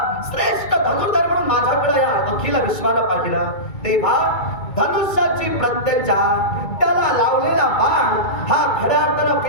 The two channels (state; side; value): late; right; 2.3 ms